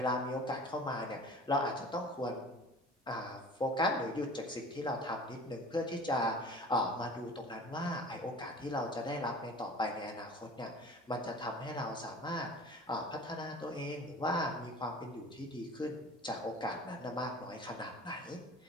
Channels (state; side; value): normal; both; correlation 0.42